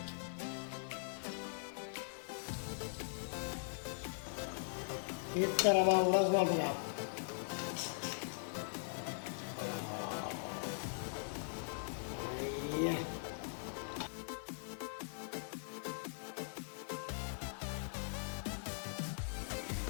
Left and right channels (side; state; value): right; silent; digital silence